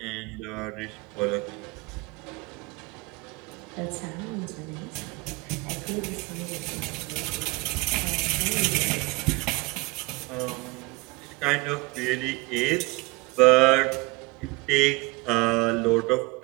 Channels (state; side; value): quieter; left; 25.2 dB